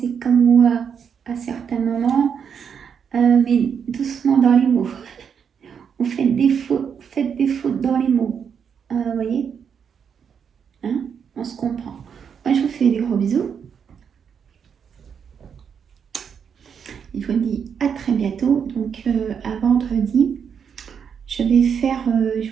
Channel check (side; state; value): left; quieter; 7.2 dB